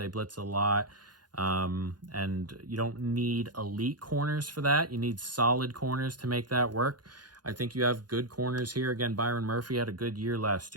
blitz a lot. And you don't need elite corners for that. You need solid corners to make that work. I think you have good corners here. Again, Byron Murphy had a good year last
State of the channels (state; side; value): late; left; 0.70 ms